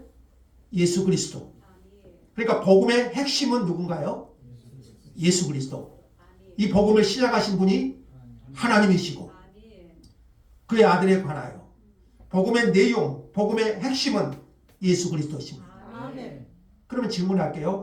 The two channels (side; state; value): both; identical; correlation 1.00